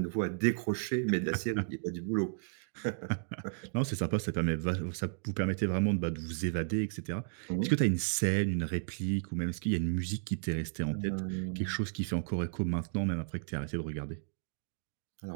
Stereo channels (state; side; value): silent; left; digital silence